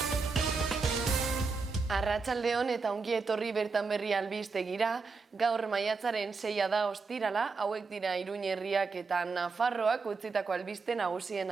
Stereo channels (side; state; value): left; quieter; 4.5 dB